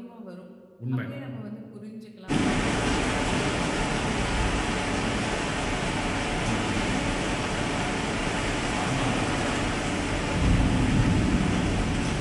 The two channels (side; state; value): both; identical; correlation 1.00